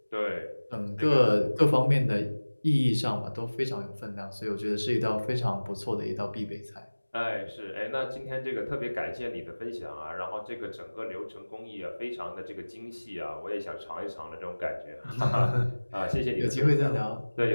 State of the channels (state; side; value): inverted; both; correlation -1.00